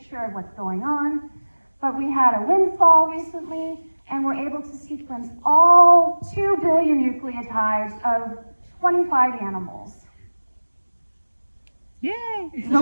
of what's going on, but we had a windfall recently, and we're able to sequence all 2 billion nucleotides of 25 animals. Yay!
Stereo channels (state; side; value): inverted; both; correlation -1.00